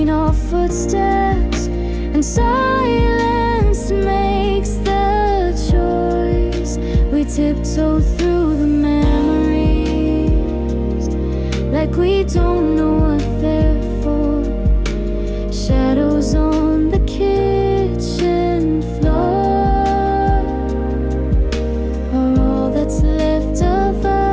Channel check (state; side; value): identical; both; correlation 1.00